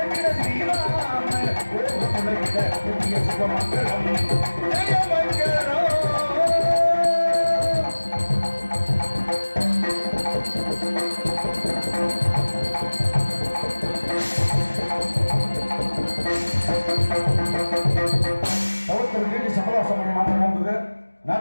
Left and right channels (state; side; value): inverted; both; correlation -1.00